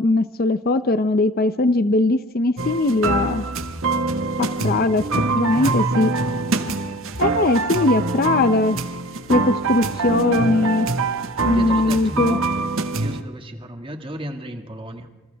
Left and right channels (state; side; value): normal; both; correlation 0.44